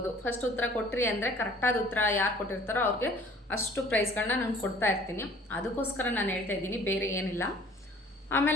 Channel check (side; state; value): both; normal; correlation 0.52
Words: ಫಸ್ಟ್ ಉತ್ತರ ಕೊಟ್ರಿ ಅಂದರೆ ಕರೆಕ್ಟಾದ ಉತ್ತರ ಯಾರು ಕೊಟ್ಟಿರ್ತಾರೋ ಅವ್ರಿಗೆ ಅಷ್ಟು ಪ್ರೈಸ್ಗಳನ್ನ ನಾನು ಕೊಡ್ತಾ ಇರ್ತೀನಿ. ಅದಕ್ಕೋಸ್ಕರ ನಾನು ಹೇಳ್ತಾ ಇದ್ದೀನಿ, ಬೇರೆ ಏನಿಲ್ಲ.